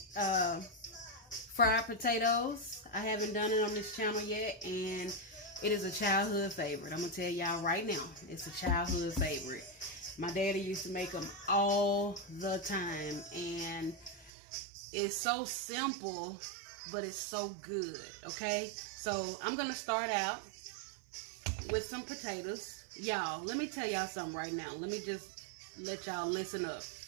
fried potatoes. I haven't done it on this channel yet, and it is a childhood favorite. I'm going to tell y'all right now, it's a childhood favorite. My daddy used to make them all the time, and it's so simple, but it's so good, okay? So I'm going to start out with some potatoes. Y'all, let me tell y'all something right now. Let me just let y'all listen up.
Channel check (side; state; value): left; drops out; at 14.3 s